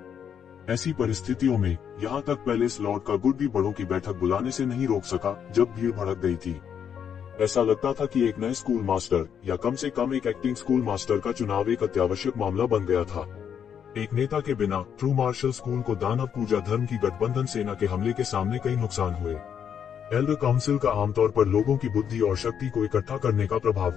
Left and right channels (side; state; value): right; quieter; 8.2 dB